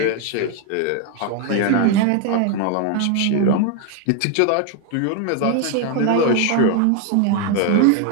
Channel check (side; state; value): both; different; correlation 0.00